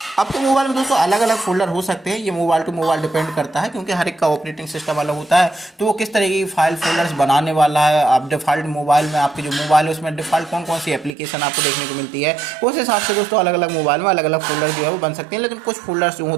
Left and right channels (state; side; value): drops out; left; at 11.2 s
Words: आपके मोबाइल में दोस्तों अलग अलग फोल्डर हो सकते हैं, ये मोबाइल टू मोबाइल डिपेंड करता है क्योंकि हर एक का ऑपरेटिंग सिस्टम अलग होता है, तो वो किस तरीके की फाइल फोल्डर्स बनाने वाला है। आप डिफॉल्ट मोबाइल में आपके जो मोबाइल है उसमें डिफॉल्ट कौन कौन सी एप्लीकेशन आपको देखने को मिलती है, उस हिसाब से दोस्तों अलग अलग मोबाइल में अलग अलग फोल्डर जो है वो बन सकते हैं। लेकिन कुछ फोल्डर्स जो